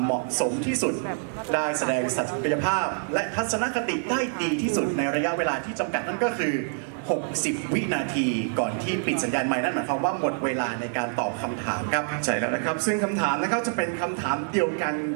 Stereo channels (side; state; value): left; silent; 61 dB below the other